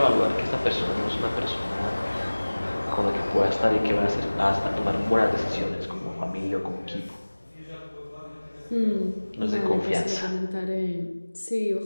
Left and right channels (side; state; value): both; inverted; correlation -1.00